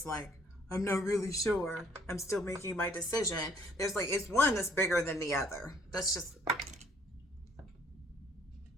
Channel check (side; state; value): both; normal; correlation 0.62